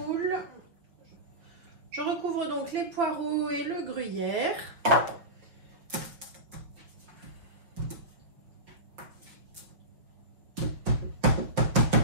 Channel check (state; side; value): late; left; 5.5 ms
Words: Je recouvre donc les poireaux et le gruyère.